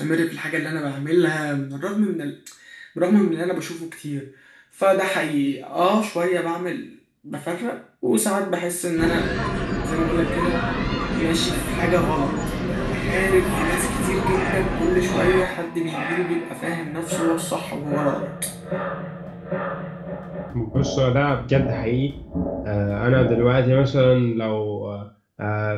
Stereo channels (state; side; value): identical; both; correlation 1.00